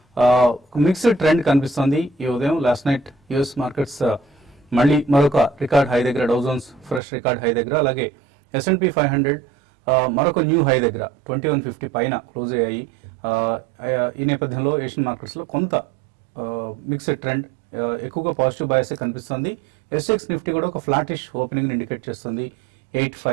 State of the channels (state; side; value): drops out; left; at 7.0 s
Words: మిక్స్డ్ ట్రెండ్ కనిపిస్తుంది ఈ ఉదయం. లాస్ట్ నైట్ యుఎస్ మార్కెట్స్ మళ్ళీ మరొక రికార్డ్ హై దగ్గర, Dow Jones fresh record high దగ్గర, అలాగే S&P 500 మరొక న్యూ హై దగ్గర 2150 పైన క్లోజ్ అయ్యాయి. ఈ నేపథ్యంలో ఏషియన్ మార్కెట్స్ లో కొంత మిక్స్డ్ ట్రెండ్, ఎక్కువగా పాజిటివ్ బయాస్ కనిపిస్తుంది. SX నిఫ్టీ కూడా ఒక ఫ్లాటిష్ ఓపెనింగ్ ఇండికేట్ చేస్తుంది.